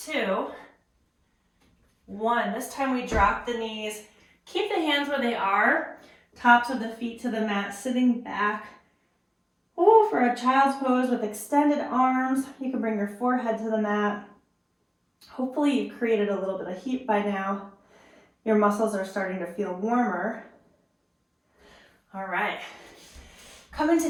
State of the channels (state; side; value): identical; both; correlation 1.00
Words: 2, 1. This time we drop the knees. Keep the hands where they are. Tops of the feet to the mat, sitting back. Ooh, for a child's pose with extended arms. You can bring your forehead to the mat. Hopefully you've created a little bit of heat by now. Your muscles are starting to feel warmer. All right. Come